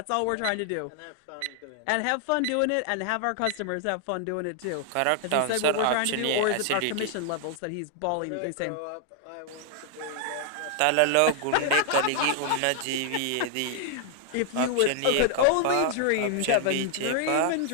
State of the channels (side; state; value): both; different; correlation 0.00